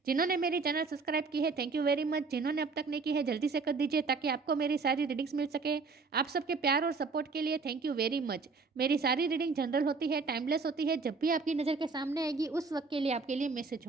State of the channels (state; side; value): quieter; left; 4.4 dB